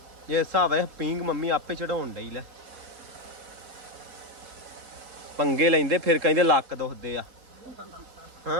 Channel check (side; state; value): left; late; 3.7 ms